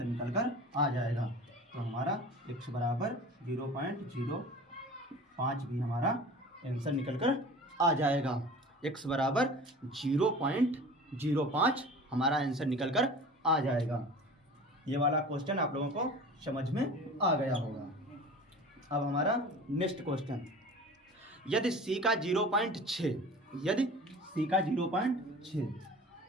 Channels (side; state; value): both; normal; correlation 0.39